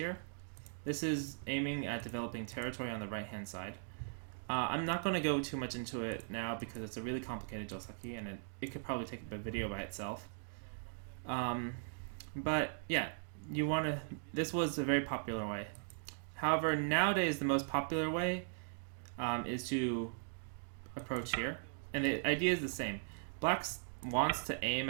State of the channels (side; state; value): left; silent; digital silence